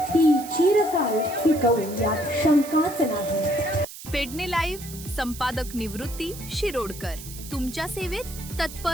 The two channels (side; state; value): right; noise; hiss, 14 dB below the sound